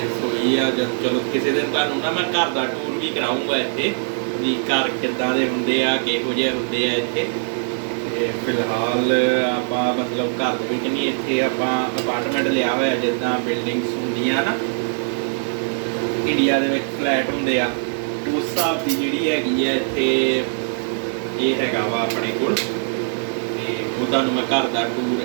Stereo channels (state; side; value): silent; left; 65 dB below the other